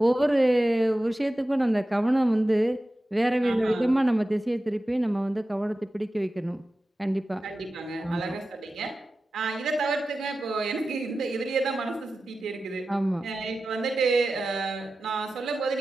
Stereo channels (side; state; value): both; normal; correlation 0.94